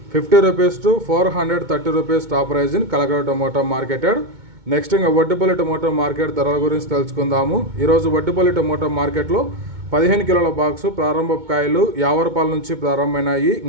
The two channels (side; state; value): left; late; 2.2 ms